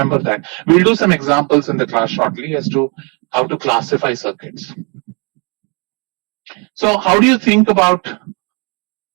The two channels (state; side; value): quieter; left; 33.7 dB